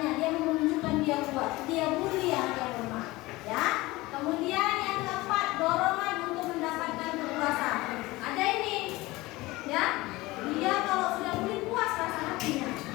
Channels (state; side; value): quieter; right; 20.3 dB